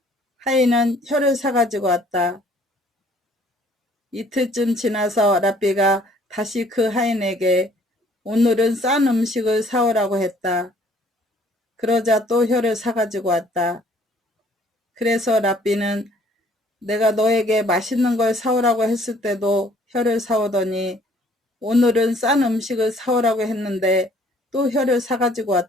하인은 혀를 사가지고 왔다. 이틀쯤 지나서 랍비가 다시 그 하인에게 오늘은 싼 음식을 사오라고 했다. 그러자 또 혀를 사가지고 왔다. 그래서 랍비는 내가 너에게 맛있는 걸 사오라고 했을 때도 혀를 사오더니 오늘은 싼 음식을 사오라고 했는데 또 혀를 사가지고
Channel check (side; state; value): both; normal; correlation 0.59